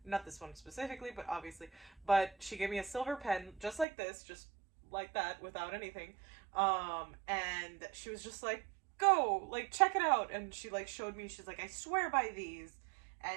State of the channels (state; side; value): drops out; left; at 3.9 s